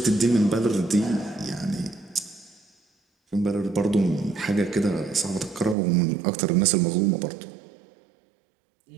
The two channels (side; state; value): left; drops out; at 5.8 s